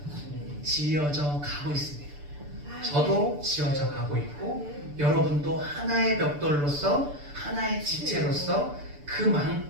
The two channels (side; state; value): left; late; 6.9 ms